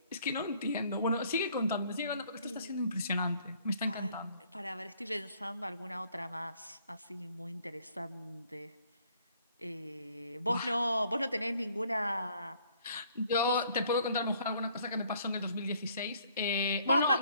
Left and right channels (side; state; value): both; inverted; correlation -0.63